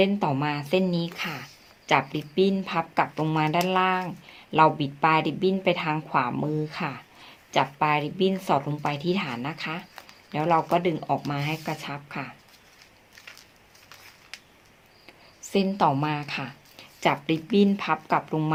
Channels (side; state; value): both; identical; correlation 1.00